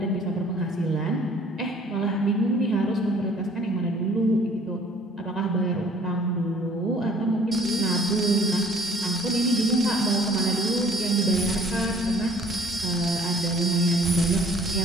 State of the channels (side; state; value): both; normal; correlation 0.55